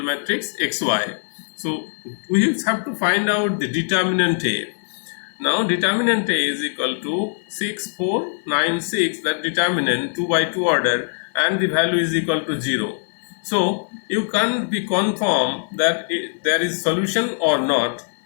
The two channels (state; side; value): silent; right; 57 dB below the other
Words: matrix xy. So we have to find out the determinant A. Now determinant A is equal to 6, 4, 9, 6, that determinant 2 by 2 order, and the value is equal to 0. So you can't be confirmed that there is solution or not.